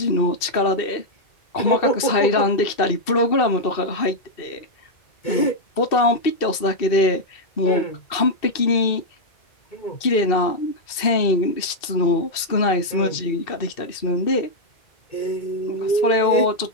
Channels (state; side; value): late; right; 2.6 ms